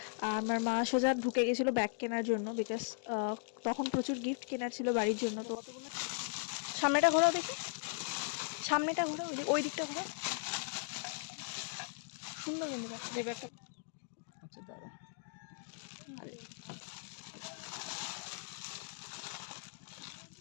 আমার মা সোজা ঢুকে গেছিলো ব্যাগ কেনার জন্য বিকজ তখন প্রচুর গিফট কেনার ছিল বাড়ির জন্য। তো সামনেটা ঘোরাও দেখি, সামনেটা ঘোরাও, ওই দিকটা ঘোরাও, সুন্দর কিন্তু ব্যাগটা। আচ্ছা দাঁড়া,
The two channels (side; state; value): right; silent; digital silence